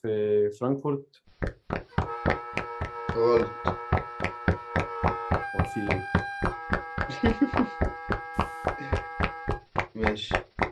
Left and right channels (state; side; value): identical; both; correlation 1.00